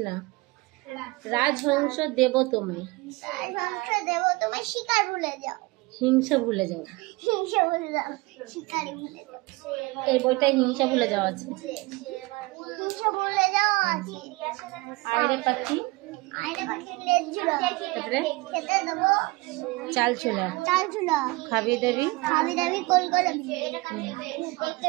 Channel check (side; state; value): left; quieter; 23.4 dB